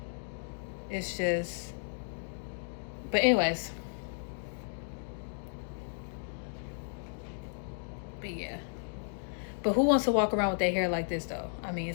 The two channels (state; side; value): silent; right; digital silence